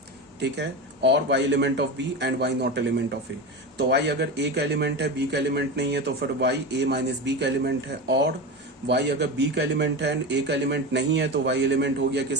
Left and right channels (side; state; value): both; normal; correlation 0.23